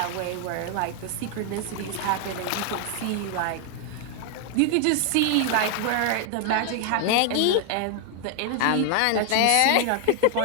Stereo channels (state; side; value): different; both; correlation 0.00